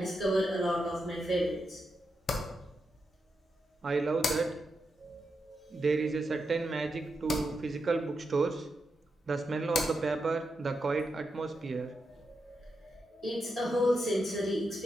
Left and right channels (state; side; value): normal; both; correlation 0.86